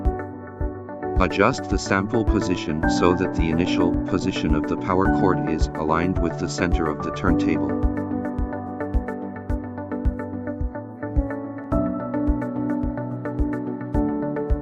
Adjust the sample position so that the initial position of the power cord is aligned with the center of the turntable.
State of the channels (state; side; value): identical; both; correlation 1.00